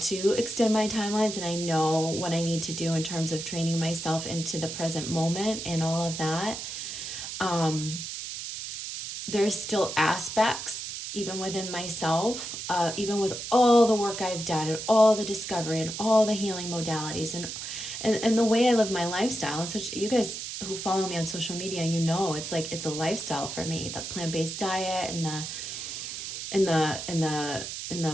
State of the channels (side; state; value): right; noise; hiss, 7 dB below the sound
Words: extend my timelines, and I know what I need to do in terms of training myself into the present moment and all of that. There's still aspects, even within myself, even with all the work I've done and all the discovery and all the healing modalities and the way I live my lifestyle. And such, you guys who follow me on social media, it's a lifestyle for me. The plant-based diet and the